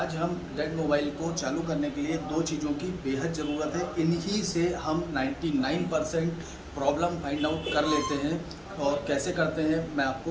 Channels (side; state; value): both; identical; correlation 1.00